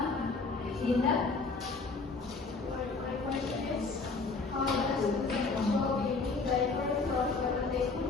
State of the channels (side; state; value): right; quieter; 4.1 dB